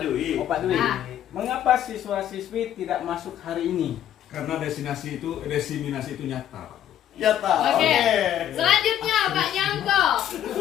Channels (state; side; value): quieter; right; 11.0 dB